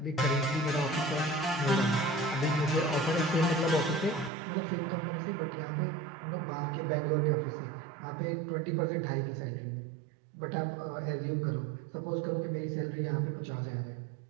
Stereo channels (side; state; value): left; drops out; at 4.3 s